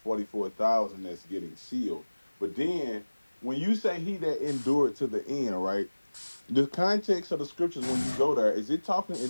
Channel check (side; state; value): both; inverted; correlation -1.00